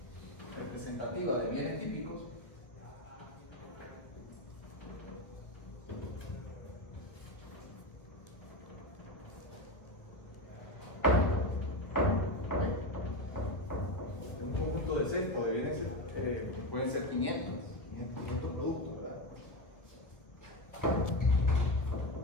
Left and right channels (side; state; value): right; late; 1.6 ms